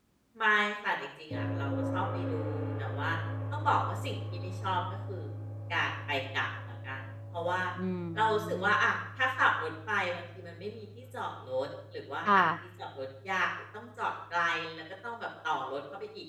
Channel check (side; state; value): both; identical; correlation 1.00